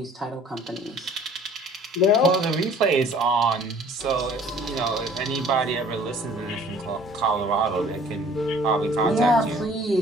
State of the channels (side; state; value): both; normal; correlation 0.53